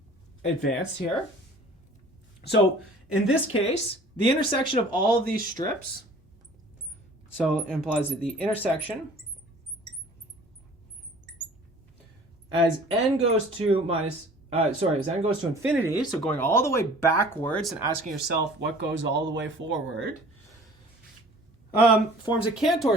Advanced here. So in this case, the intersection of all of these strips, so it implies that the intersection as n goes to infinity, so going all the way backwards and asking yourself what goes all the way forward, forms a Cantor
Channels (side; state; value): both; normal; correlation 0.48